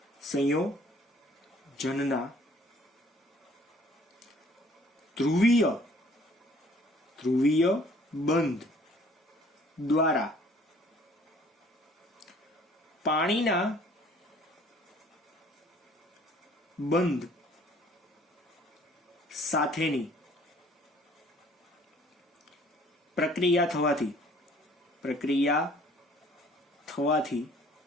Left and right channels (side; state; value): both; normal; correlation 0.56